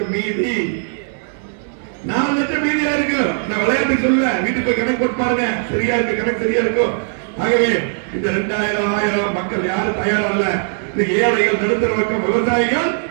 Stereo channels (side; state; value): left; silent; digital silence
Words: மீதி. 4 லட்சம் மீதியா இருக்கு. நான் விளையாட்டு சொல்ல, வீட்டுக்கு போய் கணக்கு போட்டு பாருங்க. சரியா இருக்கு, கணக்கு சரியா இருக்கும். ஆகவே இந்த 2000 1000 மக்கள் யாரும் தயாரா இல்ல. இன்னைக்கு ஏழைகள், நடுத்தர வர்க்கம், விவசாயிகள்